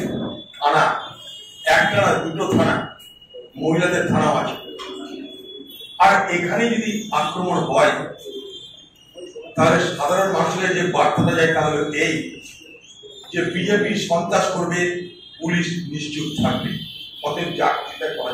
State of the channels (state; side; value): identical; both; correlation 1.00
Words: থানা, একটা না দুটো থানা, মহিলাদের থানাও আছে। আর এখানে যদি আক্রমণ হয় তাহলে সাধারণ মানুষের যে বার্তাটা যায় তা হলো এই যে বিজেপি সন্ত্রাস করবে, পুলিশ নিশ্চুপ থাকবে, অতএব চাকরিটা করা